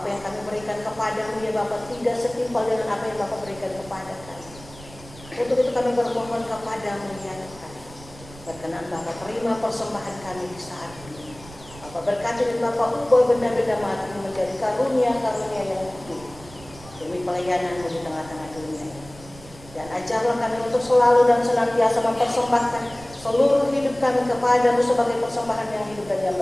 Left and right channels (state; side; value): noise; right; rumble, 19 dB below the sound